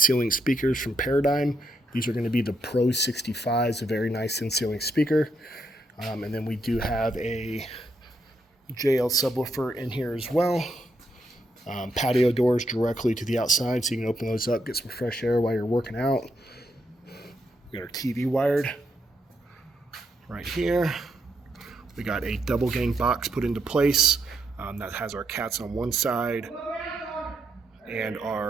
speakers from Paradigm. These are going to be the Pro 65s, a very nice in-ceiling speaker. And then we do have a JL subwoofer in here as well. Patio doors directly to the outside, so you can open those up, get some fresh air while you're working out. We got our TV wired right here. We got a double gang box put into place that has our cats on one side and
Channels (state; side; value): normal; both; correlation 0.79